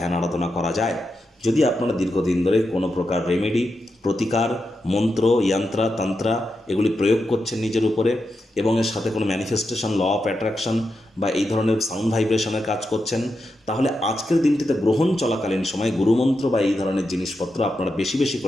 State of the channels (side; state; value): both; normal; correlation 0.87